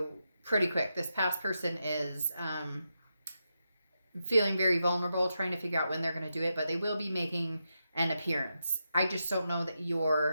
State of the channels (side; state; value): both; inverted; correlation -0.86